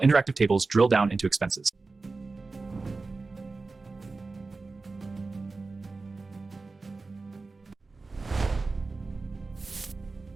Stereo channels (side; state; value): left; quieter; 3.8 dB